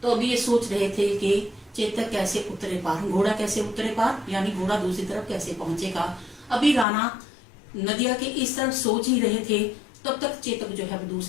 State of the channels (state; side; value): drops out; right; at 6.9 s